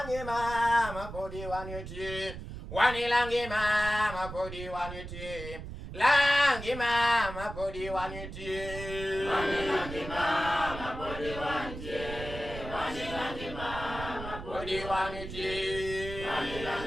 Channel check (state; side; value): noise; right; rumble, 10 dB below the sound